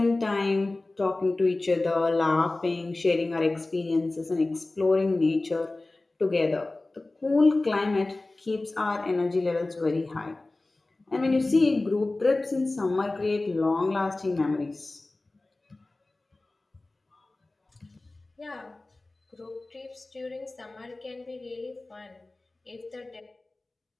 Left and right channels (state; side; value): quieter; right; 3.0 dB